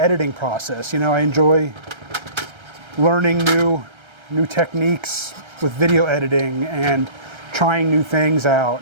process. You know, I enjoy learning new techniques with video editing and trying new things out.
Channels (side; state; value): left; late; 1.3 ms